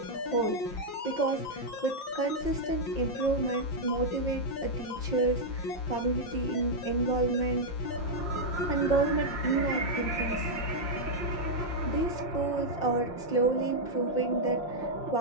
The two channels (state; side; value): late; right; 5.7 ms